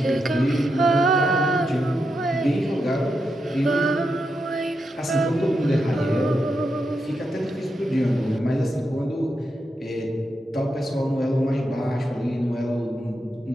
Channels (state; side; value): normal; both; correlation 0.85